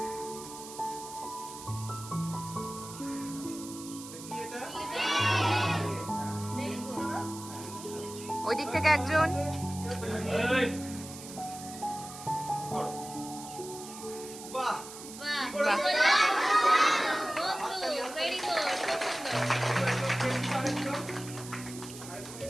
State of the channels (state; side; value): noise; right; hiss, 13 dB below the sound